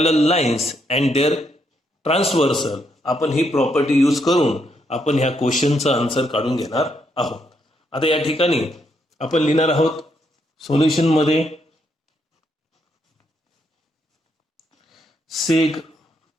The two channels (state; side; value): normal; both; correlation 0.76